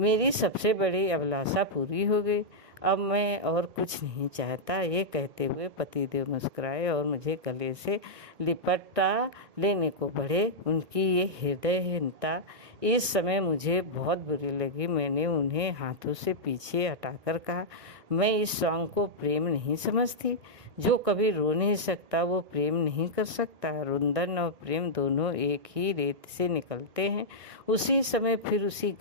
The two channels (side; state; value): left; late; 1.6 ms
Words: सबसे बड़ी अभिलाषा पूरी हो गई। अब मैं और कुछ नहीं चाहता। ये कहते हुए पतिदेव मुस्कुराए और मुझे गले से लिपटा लेने को बढ़े। उनकी ये हृदयहीनता इस समय मुझे बहुत बुरी लगी। मैंने उन्हें हाथों से पीछे हटाकर कहा, मैं इस सॉन्ग को प्रेम नहीं समझती। जो कभी रो नहीं सकता वो प्रेम नहीं कर सकता। रुंदन और प्रेम दोनों एक ही रेत से निकलते हैं। उसी समय फिर उसी